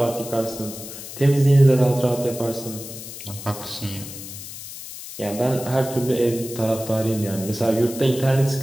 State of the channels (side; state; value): left; noise; hiss, 12 dB below the sound